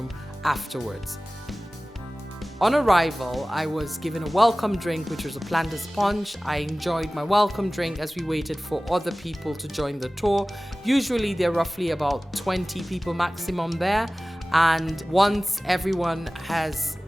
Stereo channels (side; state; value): both; normal; correlation 0.97